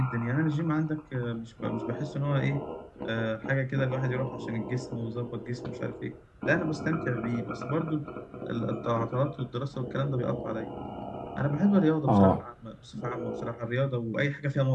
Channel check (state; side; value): identical; both; correlation 1.00